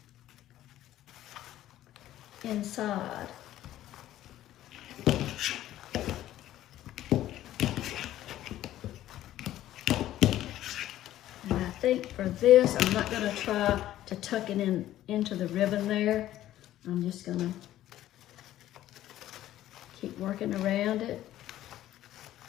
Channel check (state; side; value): quieter; right; 13.4 dB